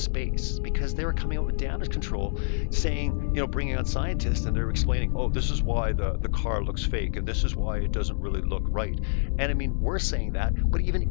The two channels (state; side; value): silent; right; digital silence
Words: because they were coming out with damage control saying, you know, bringing on scientists and they're explaining, oh, this is why the car looks fake and this is why it doesn't really look right. And I mean, we're saying that, but